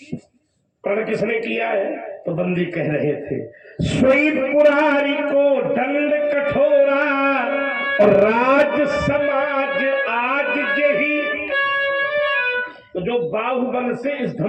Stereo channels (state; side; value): identical; both; correlation 1.00